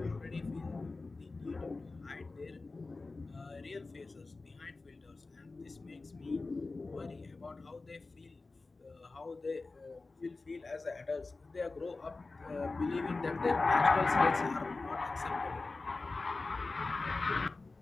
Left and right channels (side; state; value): right; quieter; 3.6 dB